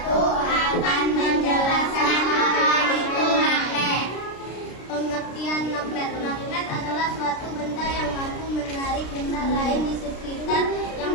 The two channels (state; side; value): late; right; 33 ms